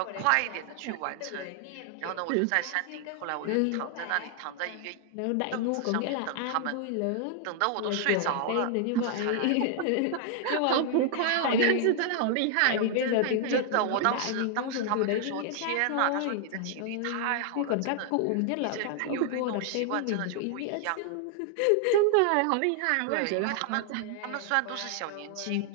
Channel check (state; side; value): different; both; correlation 0.00